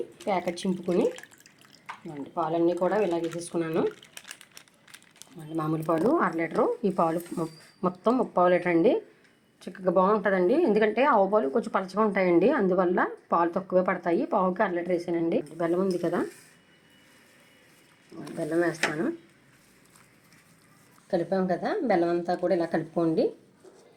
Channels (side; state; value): both; identical; correlation 1.00